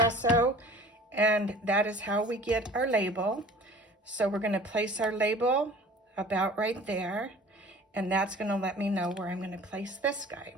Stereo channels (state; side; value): normal; both; correlation 0.45